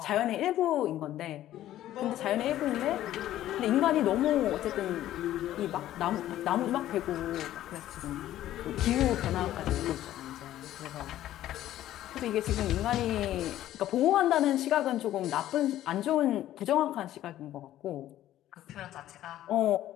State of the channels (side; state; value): right; quieter; 13.2 dB